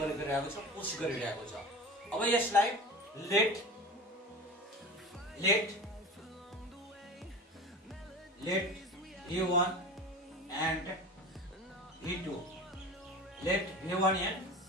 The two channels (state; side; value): normal; both; correlation 0.33